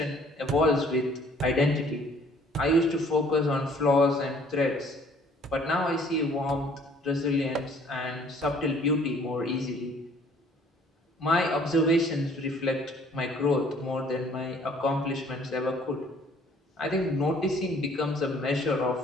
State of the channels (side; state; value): both; normal; correlation 0.57